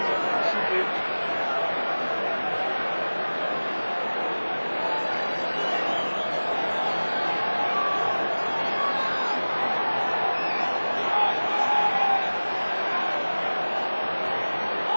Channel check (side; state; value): both; inverted; correlation -1.00